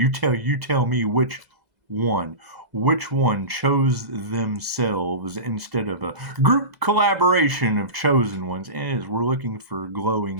tell me which one. Which one chose themselves instead of a group collaboration of chosen ones? And we're looking for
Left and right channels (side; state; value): left; late; 2.0 ms